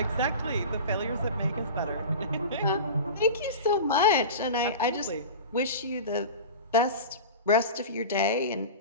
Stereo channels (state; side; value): inverted; both; correlation -0.31